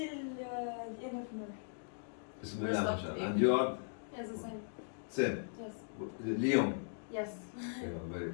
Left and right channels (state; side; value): silent; right; digital silence